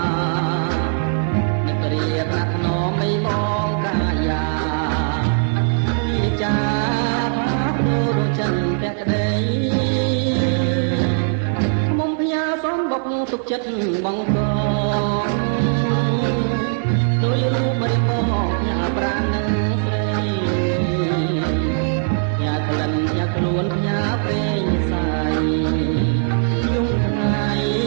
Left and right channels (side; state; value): left; silent; digital silence